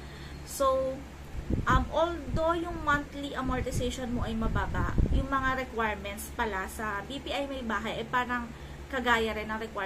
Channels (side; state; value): both; identical; correlation 1.00